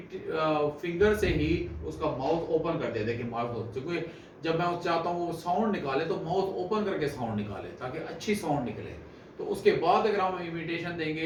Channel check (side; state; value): both; identical; correlation 1.00